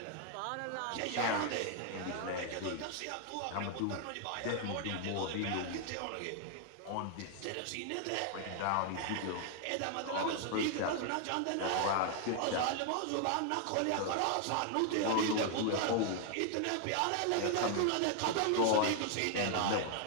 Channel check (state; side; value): different; both; correlation 0.00